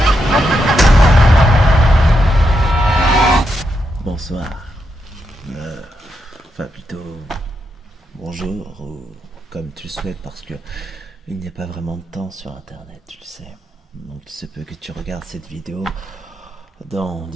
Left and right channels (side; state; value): both; normal; correlation 0.83